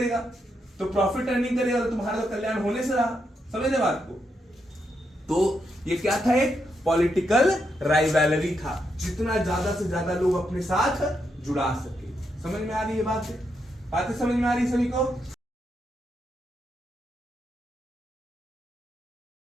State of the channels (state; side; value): normal; both; correlation 0.81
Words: तो प्रॉफिट अर्निंग करेगा तो तुम्हारा तो कल्याण होने से रहा, समझे बात को। तो ये क्या था, एक पॉलिटिकल राइवलरी था, जितना ज्यादा से ज्यादा लोग अपने साथ जुड़ा सके। समझ में आ रही है बातें समझ में आ रही है सभी को।